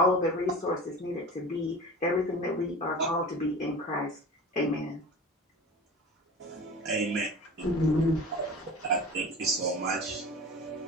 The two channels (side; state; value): both; normal; correlation 0.36